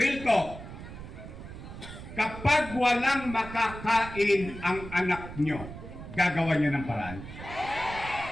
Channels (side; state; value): right; noise; rumble, 12 dB below the sound